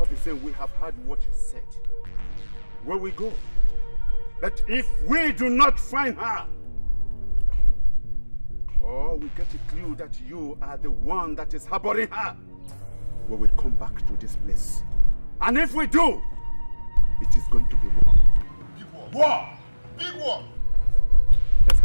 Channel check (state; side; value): inverted; both; correlation -1.00